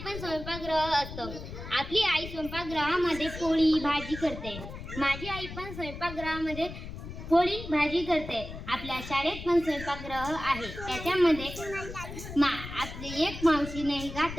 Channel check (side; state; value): left; noise; rumble, 10 dB below the sound